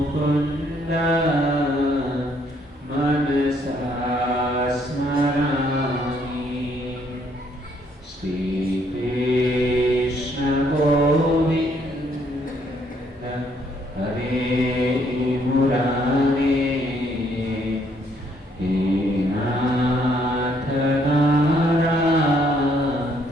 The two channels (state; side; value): normal; both; correlation 0.68